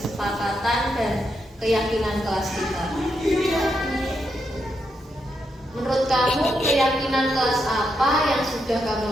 dan keyakinan kelas kita? Menurut kamu keyakinan kelas apa yang sudah kamu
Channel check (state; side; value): normal; both; correlation 0.82